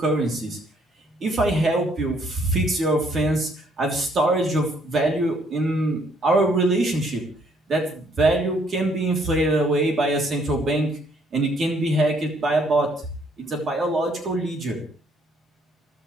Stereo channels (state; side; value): normal; both; correlation 0.66